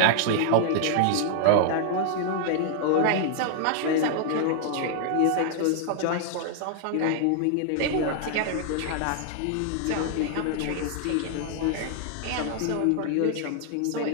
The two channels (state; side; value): different; both; correlation -0.01